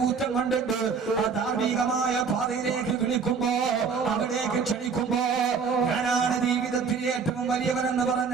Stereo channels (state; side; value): quieter; left; 5.7 dB